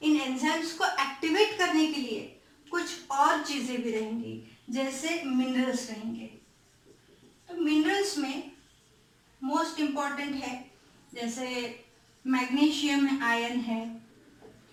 इन एंजाइम्स को एक्टिवेट करने के लिए कुछ और चीजें भी रहेंगी, जैसे मिनरल्स रहेंगे। तो मिनरल्स में मोस्ट इम्पॉर्टेंट है जैसे मैग्नीशियम आयन है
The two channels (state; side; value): identical; both; correlation 1.00